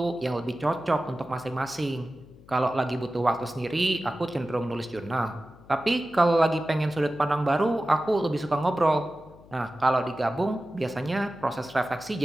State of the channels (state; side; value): noise; left; hum, 23 dB below the sound